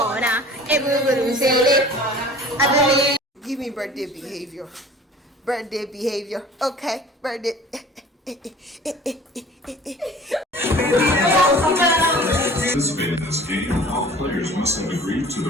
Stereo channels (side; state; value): both; normal; correlation 0.46